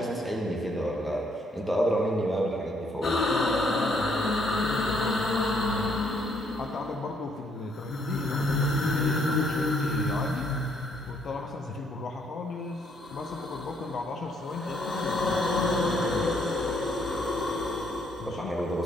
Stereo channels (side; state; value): both; normal; correlation 0.70